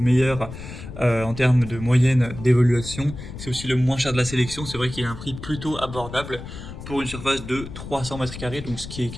en termes de moyenne d'évaluation. C'est aussi le moins cher de la sélection, c'est vrai qu'il a un prix plutôt abordable pour une surface de 300 mètres carrés, donc ce qui est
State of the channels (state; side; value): noise; left; rumble, 11 dB below the sound